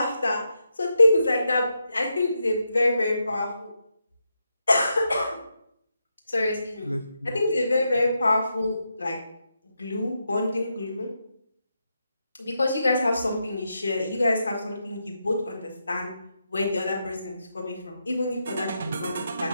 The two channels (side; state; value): both; inverted; correlation -0.85